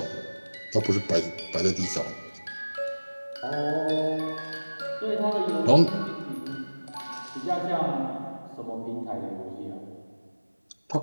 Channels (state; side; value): inverted; both; correlation -1.00